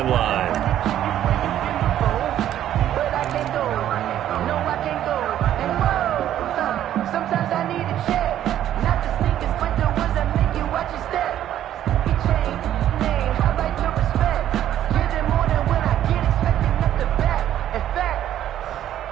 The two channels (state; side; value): quieter; left; 11.6 dB